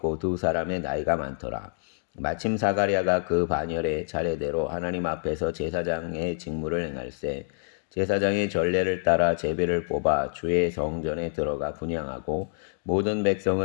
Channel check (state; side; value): silent; right; digital silence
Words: 두 사람의 나이가 많더라. 마침 사가랴가 그 반열에 차례대로 하나님 앞에서 제사장의 직무를 행할세 제사장의 전례를 따라 제비를 뽑아 주의 성전에 들어가 분향하고 모든